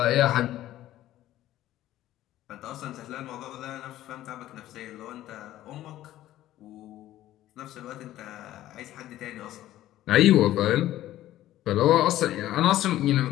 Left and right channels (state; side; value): quieter; right; 14.1 dB